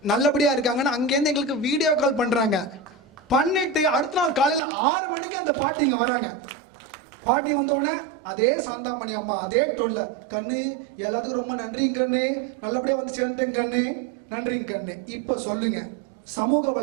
நல்லபடியாக இருக்காங்கன்னு அங்கேருந்து எங்களுக்கு வீடியோ கால் பண்ணுறாங்க. பண்ணிவிட்டு அடுத்த நாள் காலையில் 6 மணிக்கு அந்த பாட்டி இங்கே வராங்க. பாட்டி வந்தோடனே அதே சாந்தாமணி அம்மா அதே டோன்ல, கண்ணு எல்லாத்துக்கும் ரொம்ப நன்றிங்க கண்ணு, நல்லபடியாக வந்து சேர்ந்துட்டேங்க கண்ணு, நன்றிங்க கண்ணு. இப்போ சொல்லுங்க, சமூக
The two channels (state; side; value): drops out; left; at 4.6 s